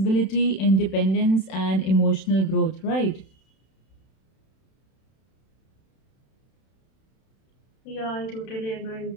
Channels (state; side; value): late; right; 31 ms